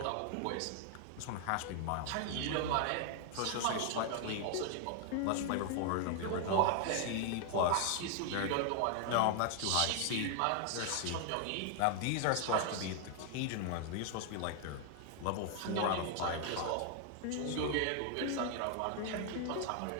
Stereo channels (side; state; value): both; different; correlation 0.00